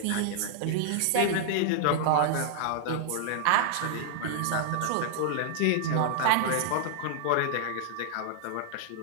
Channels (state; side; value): different; both; correlation -0.01